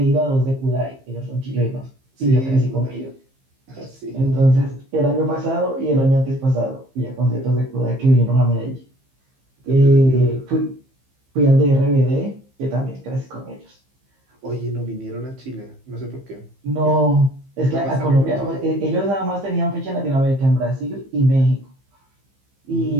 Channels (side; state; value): left; late; 15 ms